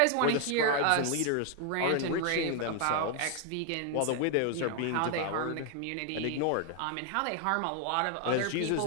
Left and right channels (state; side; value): different; both; correlation 0.00